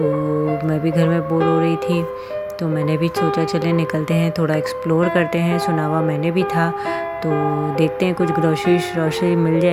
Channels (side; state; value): both; identical; correlation 1.00